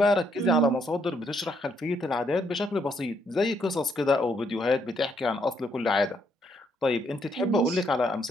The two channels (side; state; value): both; normal; correlation 0.73